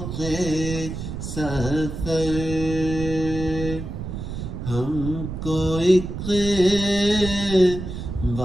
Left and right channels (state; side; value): noise; right; rumble, 7 dB below the sound